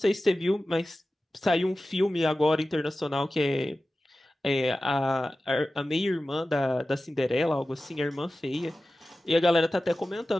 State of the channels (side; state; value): both; normal; correlation 0.95